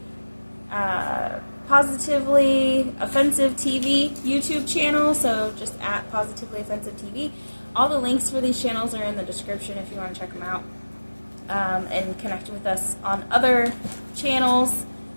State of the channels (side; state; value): both; inverted; correlation -1.00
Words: Positively Offensive TV YouTube channel, so just at Positively Offensive TV. All the links for these channels are in the description if you want to check them out, and connect with us on other channels.